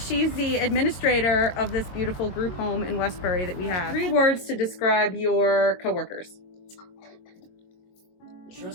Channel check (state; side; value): late; right; 22 ms